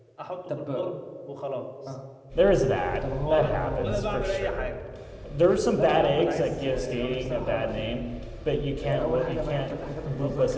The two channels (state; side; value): identical; both; correlation 1.00